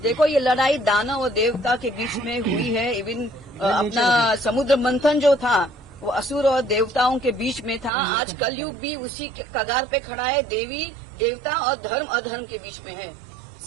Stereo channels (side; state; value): left; drops out; at 7.9 s